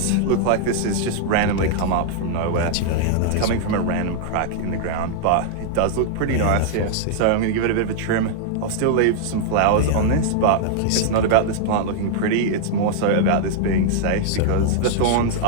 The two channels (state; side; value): different; both; correlation -0.01